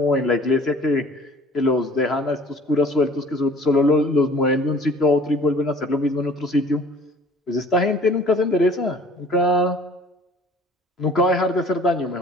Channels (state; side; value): normal; both; correlation 0.50